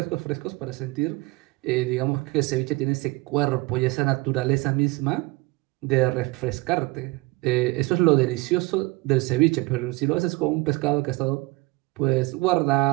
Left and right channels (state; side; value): quieter; left; 22.4 dB